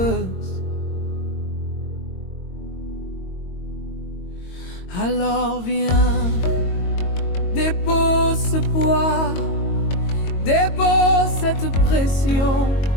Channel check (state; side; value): late; right; 22 ms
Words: Alors viens, dépose ce poids, dépose cette pression,